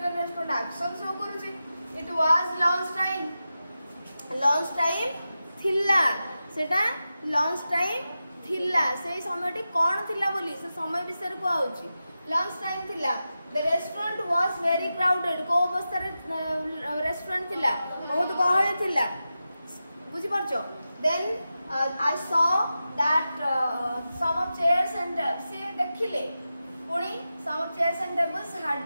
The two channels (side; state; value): both; inverted; correlation -0.92